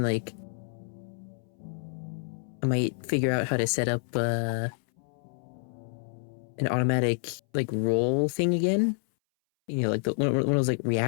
like, I might figure out how to set up, an automatic, like, roll thing again. You know, like, one of those, like,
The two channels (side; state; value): right; silent; 59 dB below the other